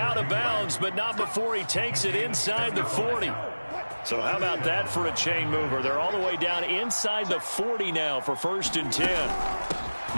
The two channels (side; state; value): both; inverted; correlation -1.00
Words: of bounds, but not before he takes it inside the 40. So how about that for a chain mover? They're all the way down inside the 40 now for 1st and 10.